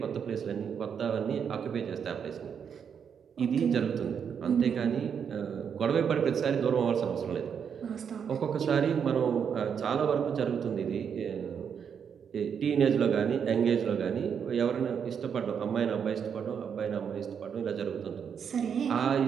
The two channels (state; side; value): quieter; left; 7.3 dB